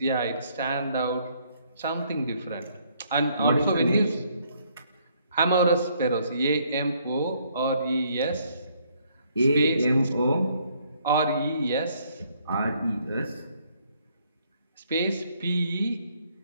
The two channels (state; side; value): inverted; both; correlation -0.67